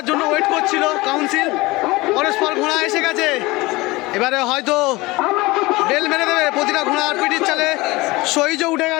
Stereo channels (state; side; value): quieter; right; 21.7 dB